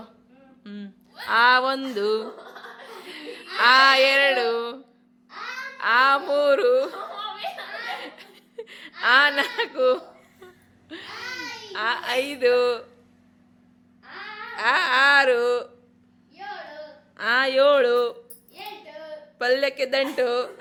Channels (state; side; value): identical; both; correlation 1.00